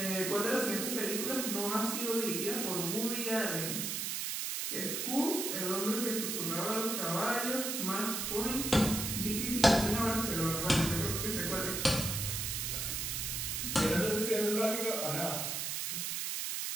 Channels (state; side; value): noise; right; hiss, 1 dB below the sound